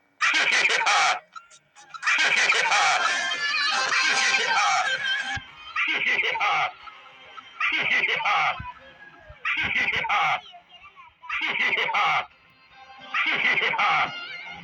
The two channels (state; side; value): identical; both; correlation 1.00